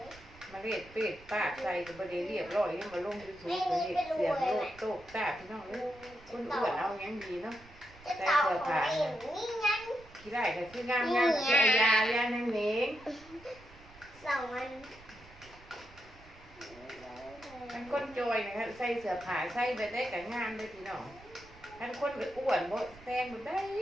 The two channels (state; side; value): noise; right; rumble, 22 dB below the sound